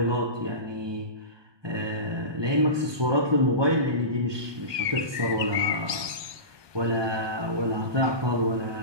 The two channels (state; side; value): late; left; 1.2 ms